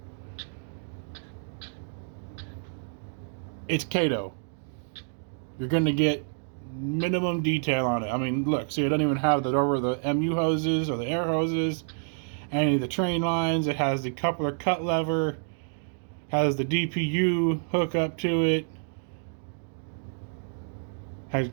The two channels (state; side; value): silent; left; digital silence